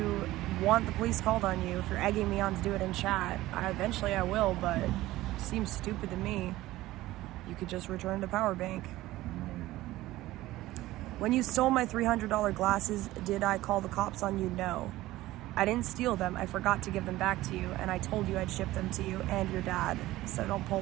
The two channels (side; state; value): left; quieter; 16.8 dB